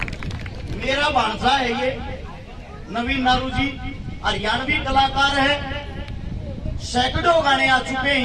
मेरा भांजा है ये नवीन नारू जी, हरियाणवी कलाकार है, सैकड़ों गाने आ चुके हैं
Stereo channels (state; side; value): identical; both; correlation 1.00